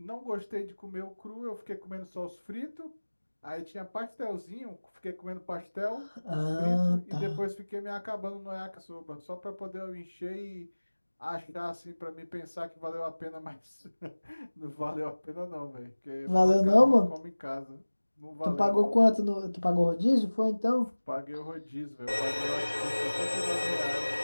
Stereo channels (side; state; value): both; inverted; correlation -1.00